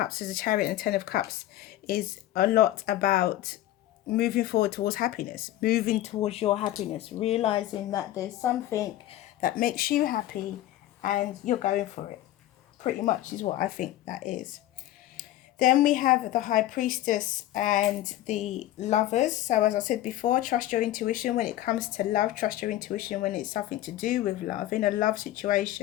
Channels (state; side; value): quieter; right; 14.2 dB